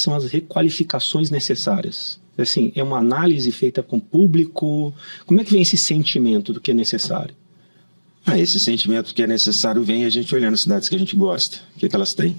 são as requalificações necessárias? Assim, é uma análise feita com o público? Como é que vem esse sentimento do que é necessário? Esse sentimento que é necessário vem a gente olhando as cidades que a gente gosta, o que elas têm.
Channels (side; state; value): both; inverted; correlation -1.00